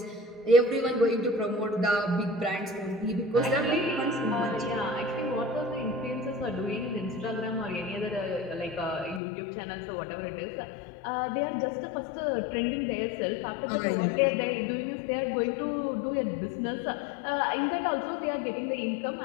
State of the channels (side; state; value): right; drops out; at 9.2 s